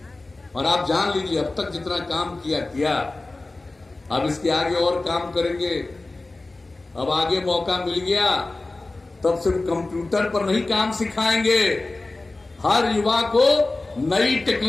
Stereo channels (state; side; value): quieter; right; 3.1 dB